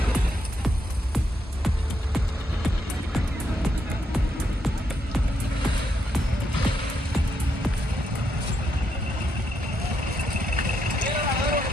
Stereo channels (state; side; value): normal; both; correlation 0.79